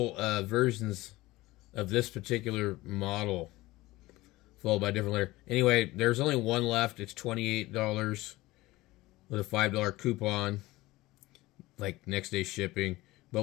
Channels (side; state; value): right; quieter; 19.0 dB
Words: versions of this particular model, followed by different letter. Anyway, there's only one left. It's $28 with a $5 coupon, like next day shipping. But